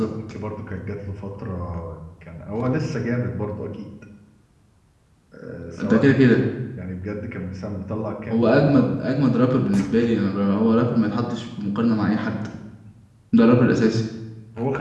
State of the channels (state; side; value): identical; both; correlation 1.00